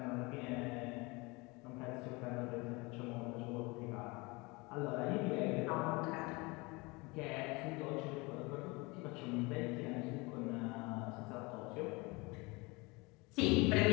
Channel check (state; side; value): quieter; right; 25.7 dB